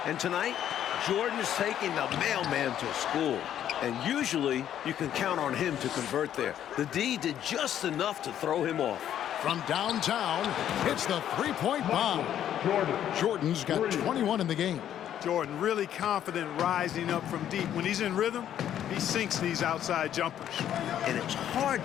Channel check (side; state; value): right; quieter; 10.6 dB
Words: And tonight, Jordan is taking the mailman to school. And usually, you can count on him to convert there. The D did just enough to throw him off. From downtown, hits the three-point bomb. Jordan's got 21 in the game. Jordan really confident rising up from deep. When he's in rhythm, he sinks these outside jumpers. And it's hard